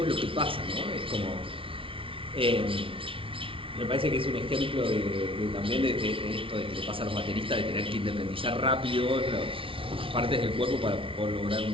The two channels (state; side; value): late; left; 0.25 ms